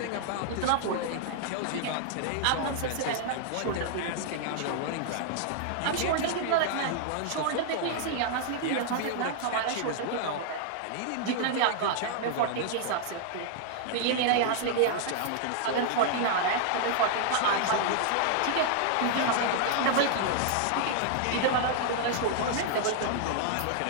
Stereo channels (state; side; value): different; both; correlation -0.01